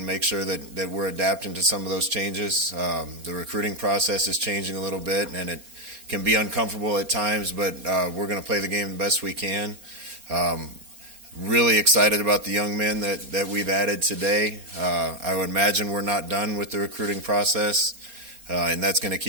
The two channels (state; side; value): late; left; 4.3 ms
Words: make sure that we're adapting to some of those changes. The recruiting process is changing a little bit, and it can be uncomfortable at times, but we're going to play the game the best we can. Really excited about the young men that we've added today. I would imagine we're not done with the recruiting process, and that's going to